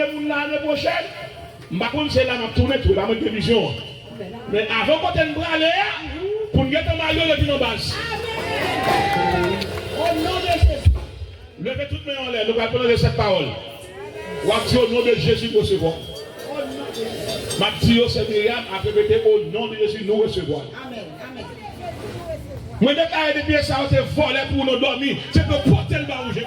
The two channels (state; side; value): identical; both; correlation 1.00